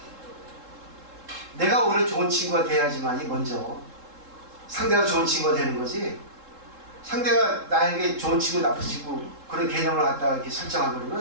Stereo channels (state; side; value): late; left; 3.7 ms